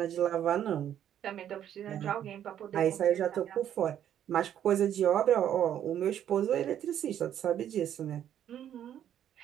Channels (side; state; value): left; quieter; 10.3 dB